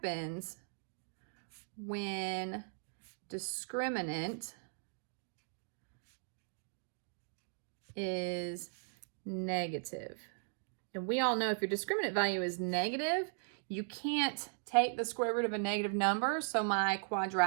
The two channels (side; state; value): left; silent; digital silence